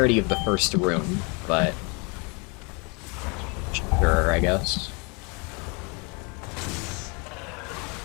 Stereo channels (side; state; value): right; quieter; 31.8 dB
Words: of the first room, but sure, I guess.